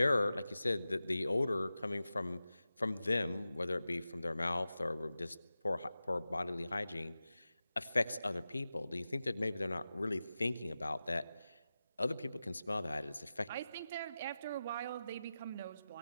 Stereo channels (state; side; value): inverted; both; correlation -0.94